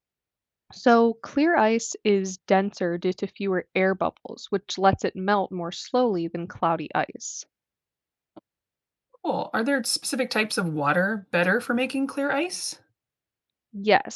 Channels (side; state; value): both; identical; correlation 1.00